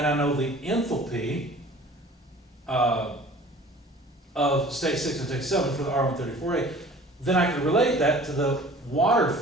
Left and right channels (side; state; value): both; normal; correlation 0.47